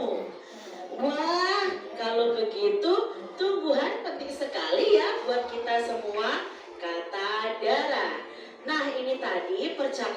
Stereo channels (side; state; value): both; identical; correlation 1.00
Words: Wah, kalau begitu tumbuhan penting sekali ya buat kita semua, kata Dara. Nah, ini tadi